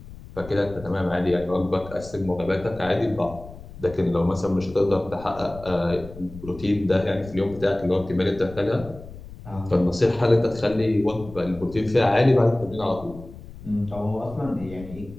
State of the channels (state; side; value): noise; left; rumble, 16 dB below the sound